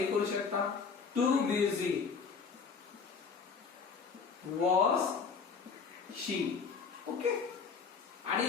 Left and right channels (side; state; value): right; quieter; 5.5 dB